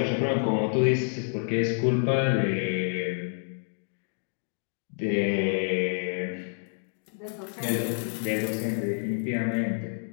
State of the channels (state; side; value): silent; right; digital silence